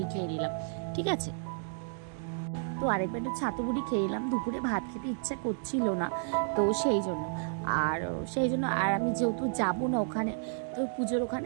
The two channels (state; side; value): silent; left; digital silence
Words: খেয়ে নিলাম, ঠিক আছে। তো আরেকবার একটু ছাতু মুড়ি খেয়ে নিলাম, দুপুরে ভাত খেতে ইচ্ছা করছিল না, তো সেই জন্য। আর আমি যেহেতু যাবো না ওখানে, তো পুজোর